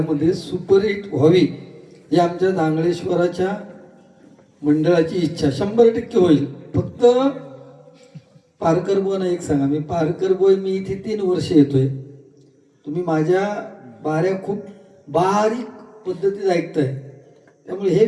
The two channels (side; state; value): both; identical; correlation 1.00